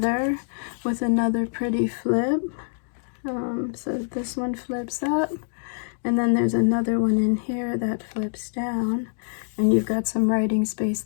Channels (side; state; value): right; silent; digital silence